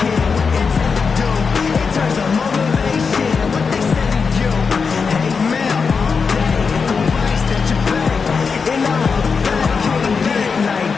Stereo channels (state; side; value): quieter; right; 5.3 dB